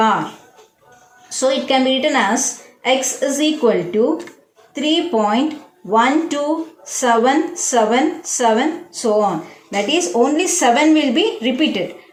So it can be written as x is equal to 3.12777 so on. That is only 7 will be repeated.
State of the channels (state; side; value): identical; both; correlation 1.00